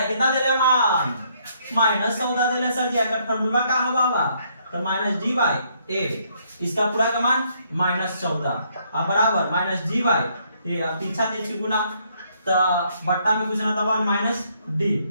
कितना दे रहे मान -14 दे रहे सर जी, अगर फार्मूला का होगा तो माइनस डी बाई ए, इसका पूरा का मान -14 अब बराबर माइनस डी बाई ए। अब पीछा तिरछी गुना तो बट्टा में कुछ ना तो 1 माइनस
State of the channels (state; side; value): inverted; both; correlation -0.69